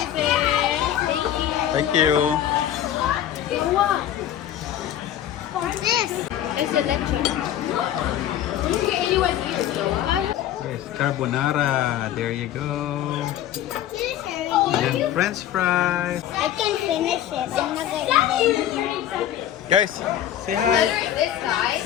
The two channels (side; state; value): right; quieter; 11.3 dB